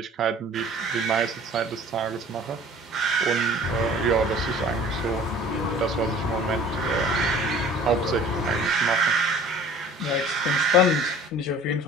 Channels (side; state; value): both; normal; correlation 0.47